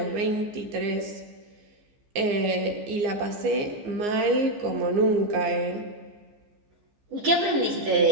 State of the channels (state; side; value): late; left; 14 ms